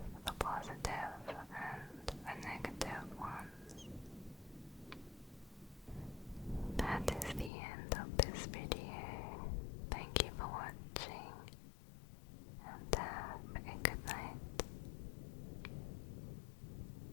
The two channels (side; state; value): right; drops out; at 7.5 s